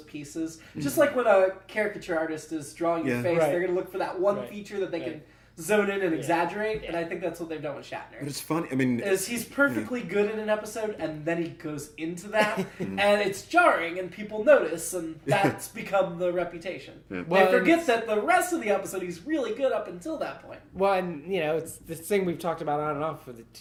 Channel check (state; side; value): identical; both; correlation 1.00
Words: pieces. Just like when a caricature artist is drawing your face, they're going to look for that one feature that they can zone in and exaggerate, and I think that's what they've done with Shatner. But it's funny. I mean, he's perfectly good in an episode, and then he goes into that, and it's jarring, and people notice, and that's become the reputation. Yeah. Well, they forget that the rest of the episode he's really good up until that point. Well, and it's this thing we've talked about on and off for the